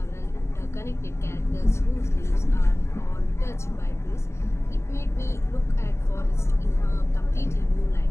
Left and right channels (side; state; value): right; late; 0.13 ms